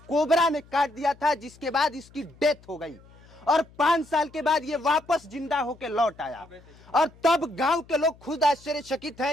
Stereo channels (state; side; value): noise; left; hum, 25 dB below the sound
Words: कोबरा ने काट दिया था, जिसके बाद इसकी डेथ हो गई और 5 साल के बाद ये वापस जिंदा होके लौट आया। और तब गांव के लोग खुद आश्चर्यचकित हैं।